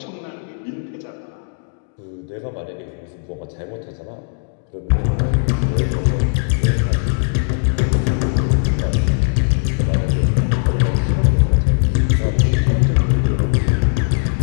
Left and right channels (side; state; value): right; silent; 67 dB below the other